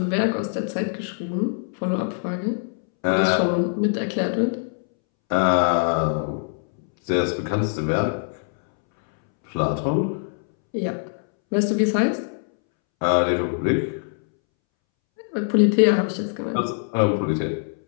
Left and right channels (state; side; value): silent; right; 63 dB below the other